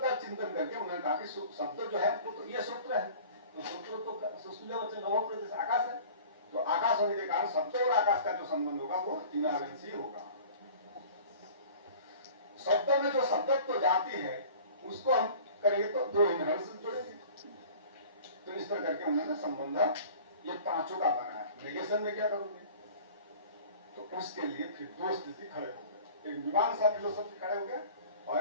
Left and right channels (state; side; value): inverted; both; correlation -0.44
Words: चिंतन करके उन्होंने कहा कि शब्द जो है वो तो ये सूत्र है, तो सूत्र तो सुशील वचन नवम प्रदेश आकाश है। तो आकाश होने के कारण शब्द और आकाश का जो संबंध होगा वो इनहेरेंसी होगा। शब्दों में जो शब्दत्व जाती है उसको हम करेंगे तो दो इनहेरिटेंस जुड़ेंगे। तो इस तरह करके उन्होंने संबंध ये पांचों का बनाया। नेगेशन में क्या करोगे? तो उसके लिए फिर दो स्थिति खड़े हो गए, एक मीमांसा फिलोसफी खड़े हो गए